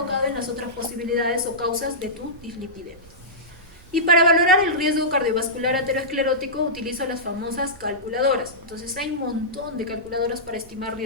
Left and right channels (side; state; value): right; noise; rumble, 22 dB below the sound